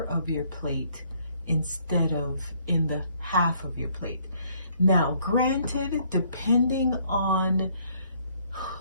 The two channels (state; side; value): inverted; both; correlation -0.65